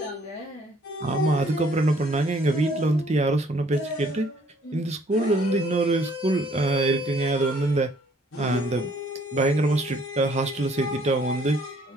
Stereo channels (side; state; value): both; normal; correlation 0.62